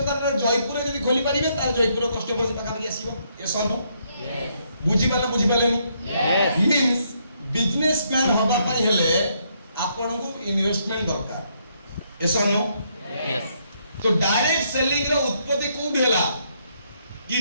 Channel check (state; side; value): inverted; both; correlation -0.73